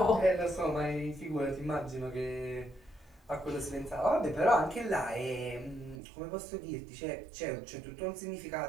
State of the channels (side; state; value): left; drops out; at 6.0 s